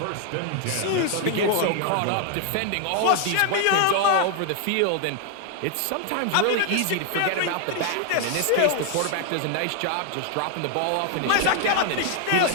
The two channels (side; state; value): both; different; correlation 0.00